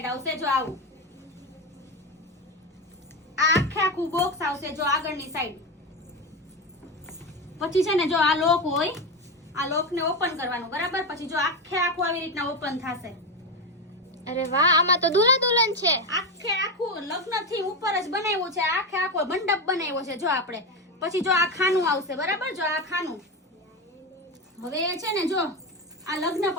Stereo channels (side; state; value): both; normal; correlation 0.15